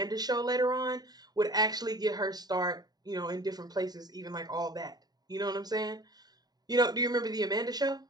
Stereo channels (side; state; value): left; late; 0.19 ms